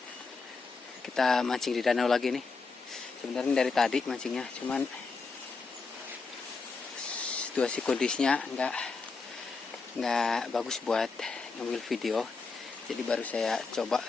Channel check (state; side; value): quieter; right; 4.4 dB